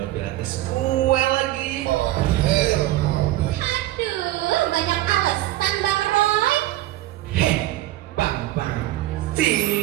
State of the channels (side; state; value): left; quieter; 15.9 dB